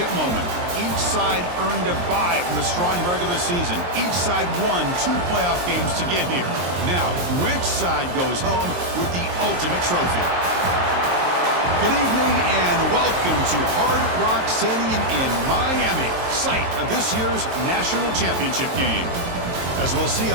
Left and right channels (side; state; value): left; late; 23 ms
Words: moment. Each side earned a bye from a strong regular season. Each side won 2 playoff games to get here. Now, which side goes home with the ultimate trophy? Good evening and welcome to Hard Rock Stadium in Miami, site of this year's national championship game. As we'll see a